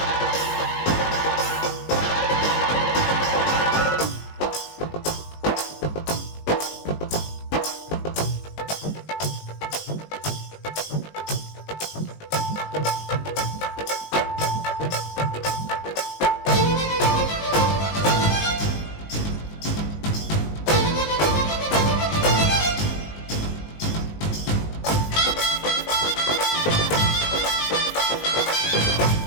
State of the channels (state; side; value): late; right; 19 ms